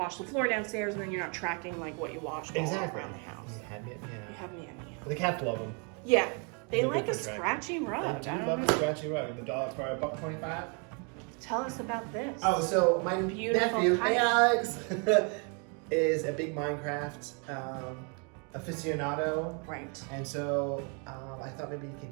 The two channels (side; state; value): left; quieter; 36.3 dB